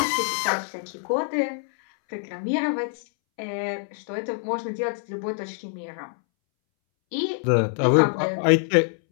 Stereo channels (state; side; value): silent; right; 62 dB below the other